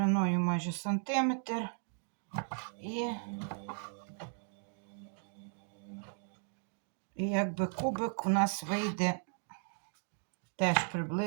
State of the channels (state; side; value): silent; left; 54 dB below the other